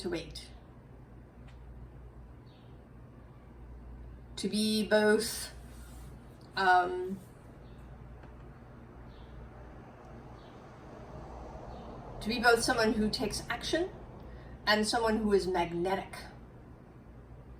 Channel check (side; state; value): both; identical; correlation 1.00